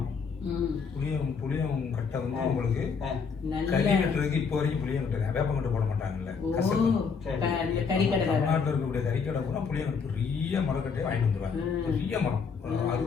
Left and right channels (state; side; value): quieter; right; 5.6 dB